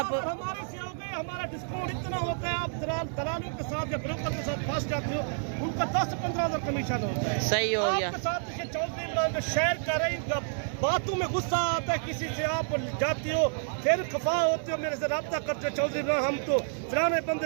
हमारे से हो गए, हमारा डिस्काउंट इतना होता है, आप दलालों के साथ या ब्रोकर के साथ फंस जाते हो, उनका 10-15 हज़ार कमीशन होता है। सही हो गया। आपके साथ चौधरी इमरान शेयर करें, बातों में गुस्सा आता है, किसी से आप जाती हो, फिर खफा होते हो, मेरे से रब्ता करते हो, चौधरी इमरान हम तो फलाने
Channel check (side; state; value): left; silent; digital silence